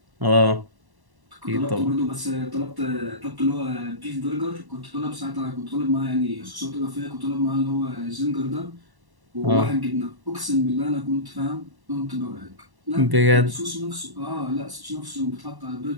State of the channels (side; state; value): left; late; 1.1 ms